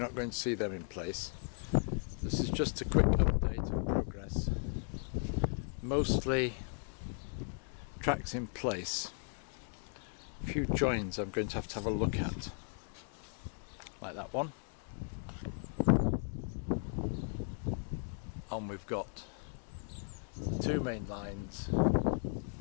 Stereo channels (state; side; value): silent; right; 53 dB below the other